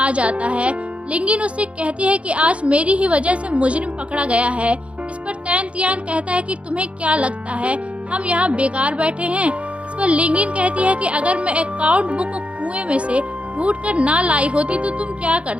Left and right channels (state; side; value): late; left; 0.061 ms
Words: जाता है। लिंगिन उससे कहती है कि आज मेरी ही वजह से मुजरिम पकड़ा गया है। इस पर तैन तियान कहता है कि तुम्हें क्या लगता है हम यहाँ बेकार बैठे हैं। इस पर लिंगिन कहती है कि अगर मैं अकाउंट बुक को कुएं में से ढूंढ कर ना लाई होती तो तुम क्या